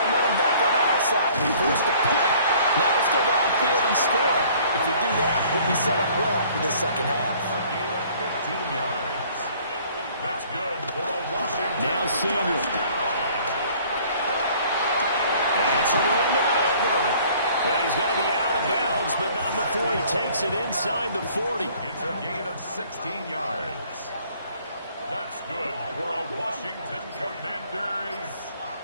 back on our side. We forced the punt. Now let's go downfield and score. If we do that, we'll be set up well for this second half. A gain of 15 yards. That's good for a Washington. Now Samuel. It's a ring to maneuver. Well, he's going to be out of bounds, but not before he takes it inside the 40. It's a gain of 16 yards. That's good for a Washington Commanders.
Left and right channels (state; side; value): inverted; both; correlation -0.56